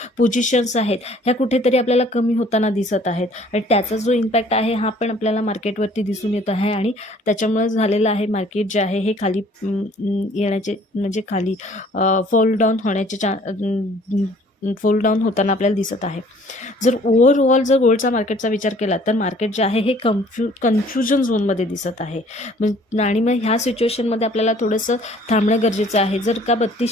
पोझिशन्स आहेत ह्या कुठेतरी आपल्याला कमी होताना दिसत आहेत आणि त्याचा जो इम्पॅक्ट आहे हा पण आपल्याला मार्केटवरती दिसून येत आहे आणि त्याच्यामुळे झालेलं आहे मार्केट जे आहे हे खाली येण्याचे म्हणजे खाली फॉल डाऊन होण्याचे फॉल डाऊन होताना आपल्याला दिसत आहे. जर ओव्हरऑल जर गोल्डचा मार्केटचा विचार केला तर मार्केट जे आहे हे कन्फ्युजन झोनमध्ये दिसत आहे. आणि मग ह्या सिच्युएशनमध्ये आपल्याला थोडंसं थांबणं गरजेचं आहे. जर का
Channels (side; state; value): both; normal; correlation 0.55